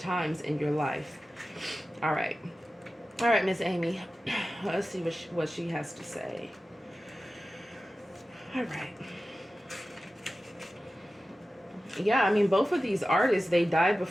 in your life. All right. All right, Miss Amy. Let's see what she has to say. All right. Yeah, I mean, both of these artists, they died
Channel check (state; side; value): normal; both; correlation 0.95